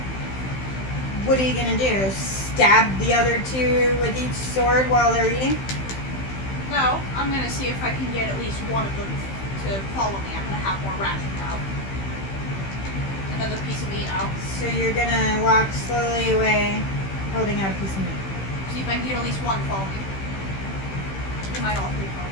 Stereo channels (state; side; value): late; right; 15 ms